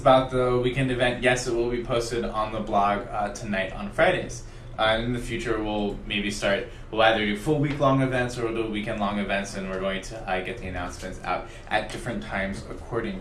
the weekend event. Yes, it will be posted on the blog tonight on Fridays. In the future, we'll either do full week-long events or we'll do weekend-long events, and we're going to get the announcements out at different times according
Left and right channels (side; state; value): both; identical; correlation 1.00